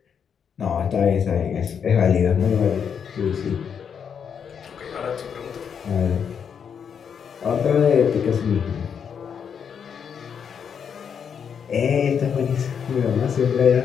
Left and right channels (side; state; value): right; quieter; 7.3 dB